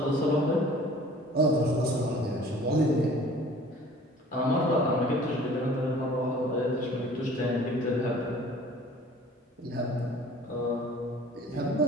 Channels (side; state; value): both; normal; correlation 0.49